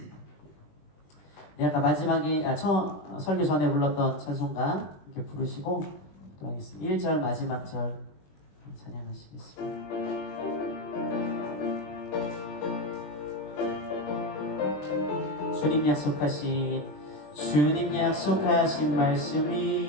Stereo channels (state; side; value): late; right; 20 ms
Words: 네, 아까 마지막에 설교 전에 불렀던 찬송가 이렇게 부르시고 기도하겠습니다. 1절 마지막 절 찬양하시겠습니다. 주님 약속하신 말씀